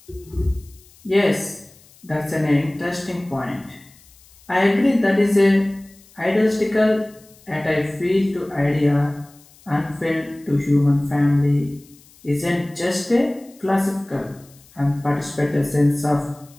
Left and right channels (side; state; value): left; noise; hiss, 27 dB below the sound